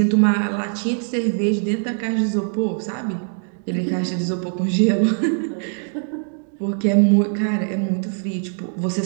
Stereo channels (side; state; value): left; silent; 64 dB below the other